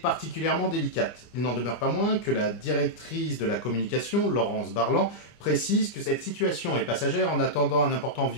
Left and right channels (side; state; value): right; late; 25 ms